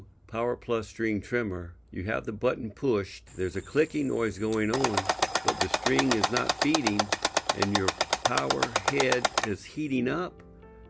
Power Plus string trimmer, you have the button pushed, there's a clicking noise going on, but the string is not feeding and your power head is heating up,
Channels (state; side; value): identical; both; correlation 1.00